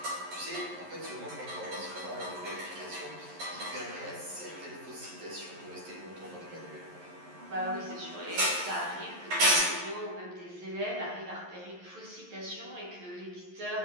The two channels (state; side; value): late; left; 11 ms